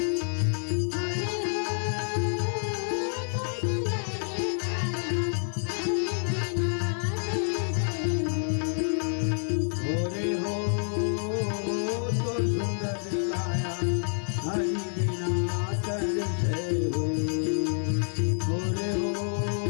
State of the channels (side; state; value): right; silent; 59 dB below the other